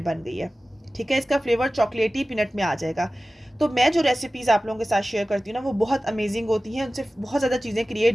बन गई है। ठीक है, इसका फ्लेवर चॉकलेटी पीनट में आ जाएगा। तो मैं जो रेसिपीज़ आप लोगों के साथ शेयर करती हूँ ना, वो बहुत अमेजिंग होती हैं, उनसे बहुत ज़्यादा चीज़ें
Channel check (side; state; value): both; normal; correlation 0.96